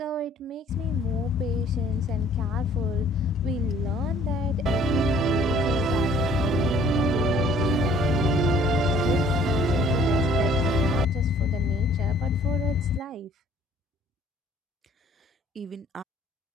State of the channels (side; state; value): both; normal; correlation 0.56